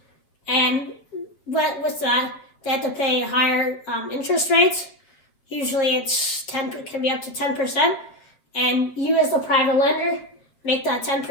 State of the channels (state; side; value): late; right; 7.8 ms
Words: And with that, they have to pay higher interest rates. Usually it can be up to 10%, and you as the private lender make that